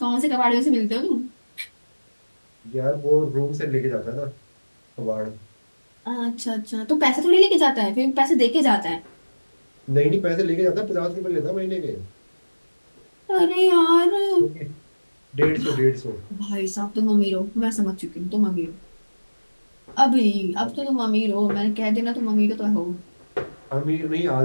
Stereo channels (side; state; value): both; inverted; correlation -1.00